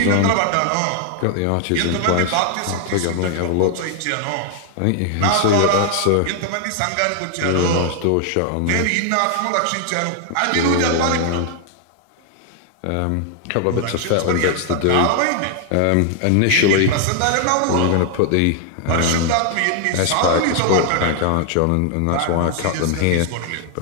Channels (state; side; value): different; both; correlation 0.00